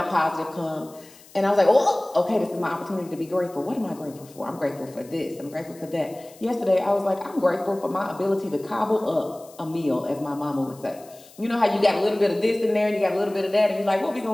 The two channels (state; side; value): noise; left; hiss, 23 dB below the sound